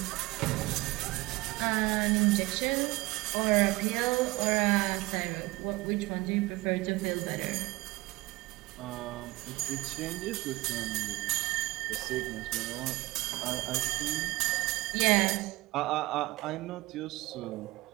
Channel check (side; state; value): left; quieter; 21.0 dB